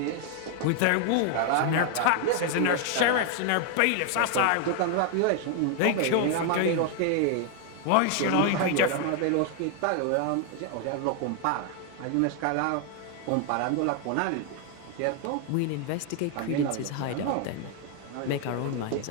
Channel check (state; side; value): different; both; correlation 0.00